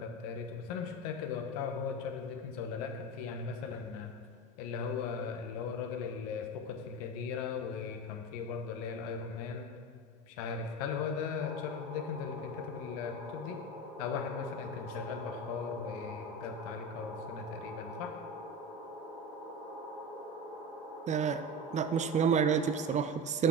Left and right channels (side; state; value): both; normal; correlation 0.25